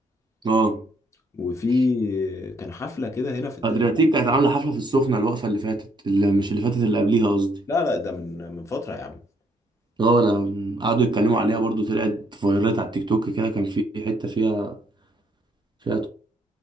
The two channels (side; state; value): both; normal; correlation 0.70